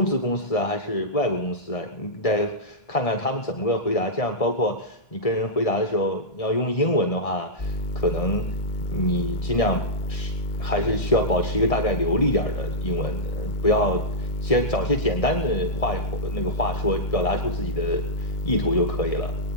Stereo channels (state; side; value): late; right; 1.7 ms